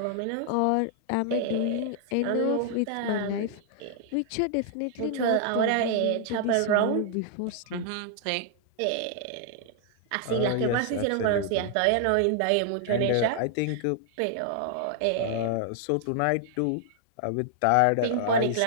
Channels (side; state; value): both; different; correlation -0.01